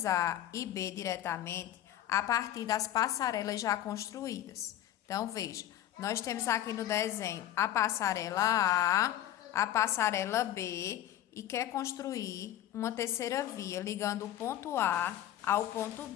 A e B diretamente a partir das passarelas já construídas. Então, veja, nós temos aqui no desenho a passarela A, a passarela B e quer construir uma terceira via ligando o ponto A ao ponto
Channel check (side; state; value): right; quieter; 12.2 dB